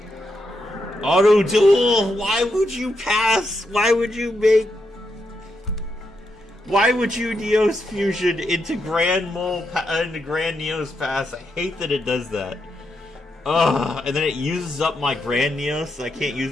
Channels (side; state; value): both; normal; correlation 0.82